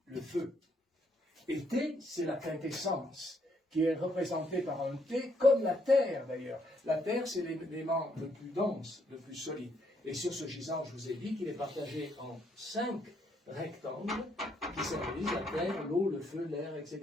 le feu. Et T, c'est la quintessence, qui est représentée par un T, comme la terre d'ailleurs. La terre, c'est l'élément le plus dense, le plus solide. Et sur ce gisant, je vous ai dit qu'il est partagé en 5 rectangles, qui symbolisent la terre, l'eau, le feu, l'air,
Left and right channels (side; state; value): both; normal; correlation 0.72